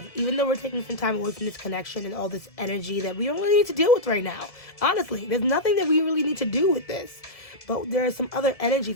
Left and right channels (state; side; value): late; right; 1.7 ms